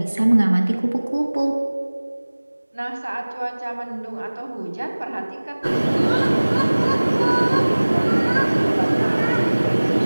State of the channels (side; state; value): both; inverted; correlation -1.00